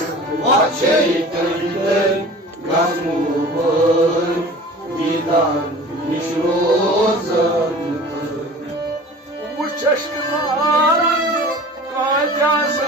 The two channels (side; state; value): both; normal; correlation 0.41